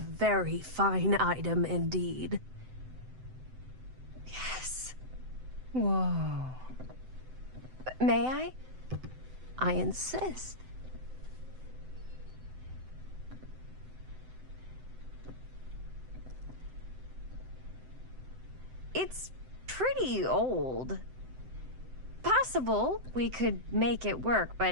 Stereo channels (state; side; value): late; left; 7.8 ms